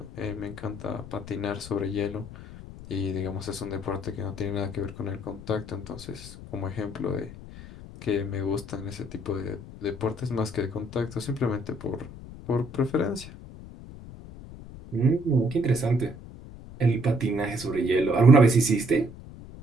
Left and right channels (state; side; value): noise; left; rumble, 15 dB below the sound